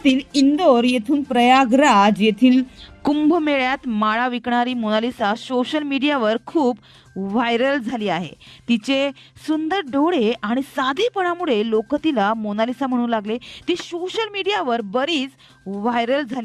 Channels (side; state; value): both; identical; correlation 1.00